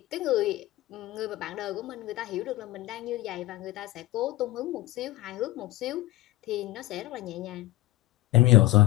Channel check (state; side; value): quieter; right; 17.8 dB